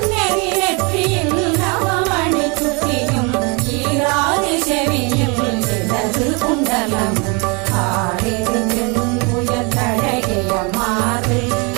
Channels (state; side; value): quieter; left; 30.6 dB